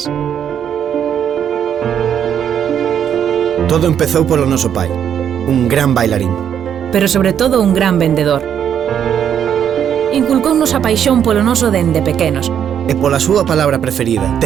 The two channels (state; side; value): quieter; left; 8.9 dB